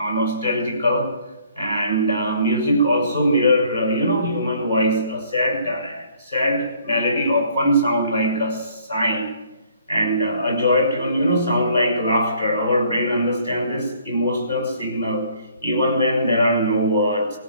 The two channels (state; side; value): inverted; both; correlation -0.60